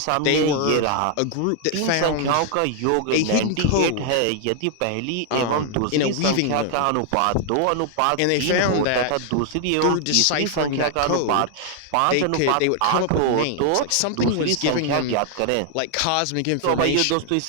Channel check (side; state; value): both; different; correlation 0.00